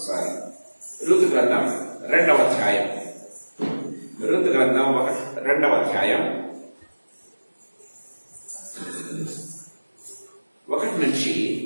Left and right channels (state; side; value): inverted; both; correlation -1.00